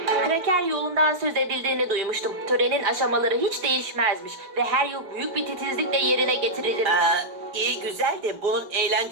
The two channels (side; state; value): left; late; 5.2 ms